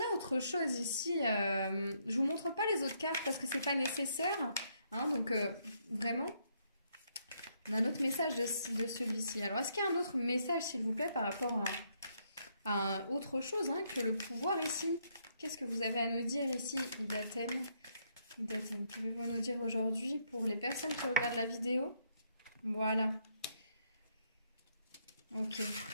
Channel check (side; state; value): both; inverted; correlation -0.73